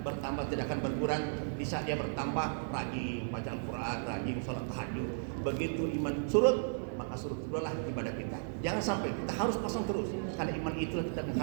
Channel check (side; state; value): left; silent; 55 dB below the other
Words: bertambah, tidak akan berkurang. Di saat dia bertambah, rajin baca Al-Quran, rajin sholat tahajud. Begitu iman surut, maka surut itulah ibadah kita. Jangan sampai kita harus pasang terus, karena iman itulah kita